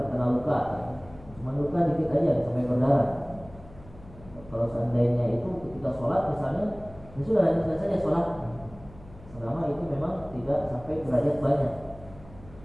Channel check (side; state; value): left; noise; hum, 20 dB below the sound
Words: luka, cuma luka dikit aja sampai berdarah. Kalau seandainya itu ketika sholat misalnya, itu sudah lanjutkan saja sholat, selama itu memang tidak sampai derajat banyak.